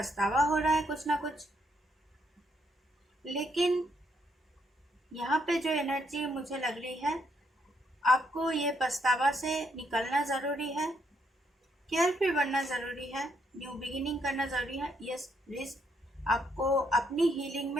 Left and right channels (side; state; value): both; normal; correlation 0.74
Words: हो रहा है कुछ ना कुछ, लेकिन यहाँ पे जो एनर्जी मुझे लग रही है, आपको ये पछतावा से निकलना ज़रूरी है, केयरफुल बनना ज़रूरी है, न्यू बिगिनिंग करना ज़रूरी है। यस, रिस्क आपको अपनी हीलिंग